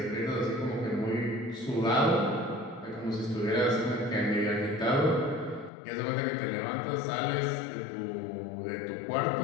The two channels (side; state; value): right; drops out; at 5.7 s